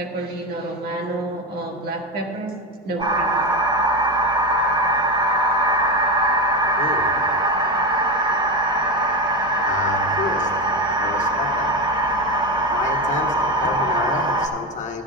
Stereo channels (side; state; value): both; normal; correlation 0.17